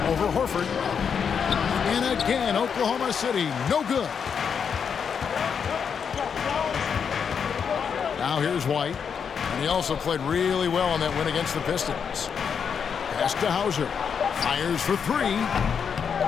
Over Horford. And again, Oklahoma City, no good. Now here's White. And he also played really well on that win against the Pistons. Pass to Hauser. Fires for 3.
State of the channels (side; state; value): right; quieter; 6.8 dB